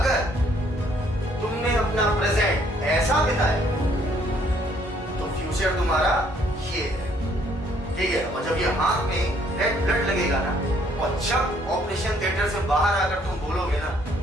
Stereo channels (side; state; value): both; normal; correlation 0.65